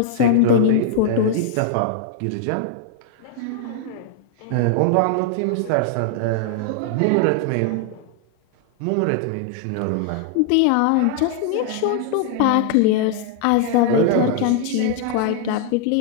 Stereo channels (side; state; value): both; different; correlation 0.00